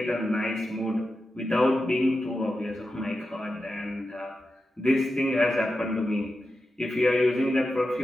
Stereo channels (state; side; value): normal; both; correlation 0.90